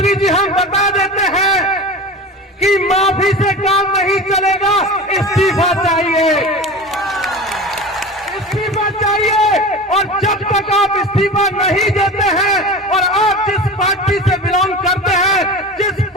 जी हम बता देते हैं कि माफी से काम नहीं चलेगा, इस्तीफा चाहिए। इस्तीफा चाहिए। और जब तक आप इस्तीफा नहीं देते हैं और आप जिस पार्टी से बिलोंग करते हैं, जिस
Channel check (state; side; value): normal; both; correlation 0.32